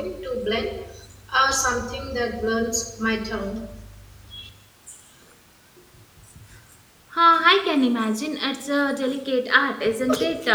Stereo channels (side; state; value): both; identical; correlation 1.00